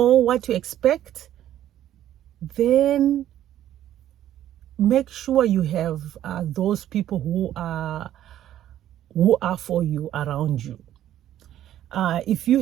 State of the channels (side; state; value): left; quieter; 12.0 dB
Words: what to expect, then make sure you have those people who are for you around you. If